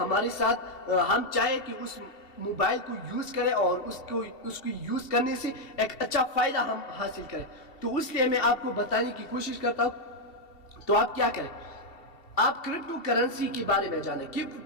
ساتھ ہم چاہے کہ موبائل کو یوز کریں اور اس کو یوز کرنے سے ایک اچھا فائدہ ہم حاصل کریں. تو اس لیے میں آپ کو بتانے کی کوشش کرتا ہوں. تو آپ کیا کریں, آپ کرپٹو کرنسی کے بارے میں جانیں کہ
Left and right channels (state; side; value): late; right; 2.7 ms